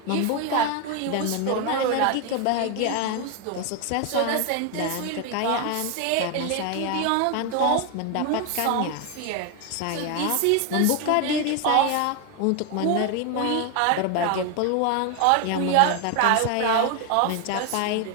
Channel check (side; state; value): both; different; correlation 0.01